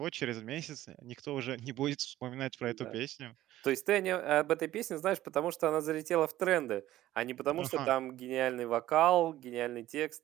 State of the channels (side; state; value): left; quieter; 14.5 dB